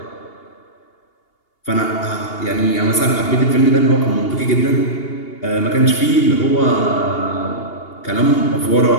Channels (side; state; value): right; late; 2.8 ms